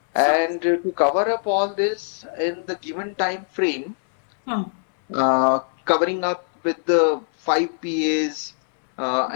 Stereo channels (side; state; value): right; silent; 63 dB below the other